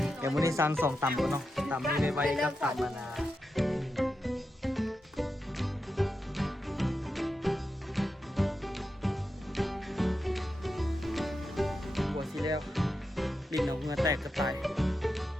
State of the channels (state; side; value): normal; both; correlation 0.88